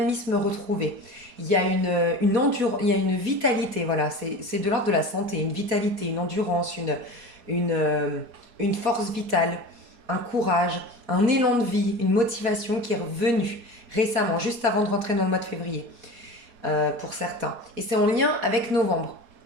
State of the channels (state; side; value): late; left; 4.2 ms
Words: retrouvé. Il y a il y a une vitalité, voilà, c'est de l'ordre de la santé, une vitalité, une endurance, une, euh, une force vitale, un courage, un élan de vie, une motivation qui est revenue récemment, juste avant de rentrer dans le mois de février, pour certains. Et c'est en lien avec novembre.